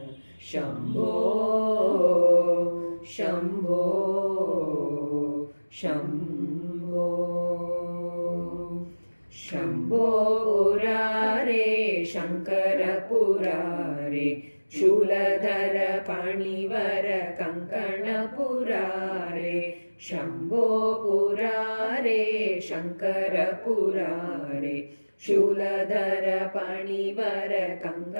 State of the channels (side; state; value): both; inverted; correlation -1.00